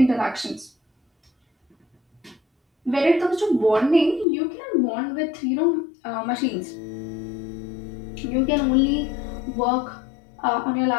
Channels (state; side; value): drops out; right; at 4.2 s